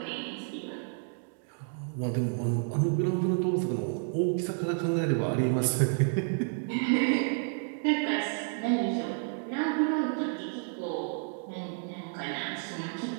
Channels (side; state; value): left; silent; 57 dB below the other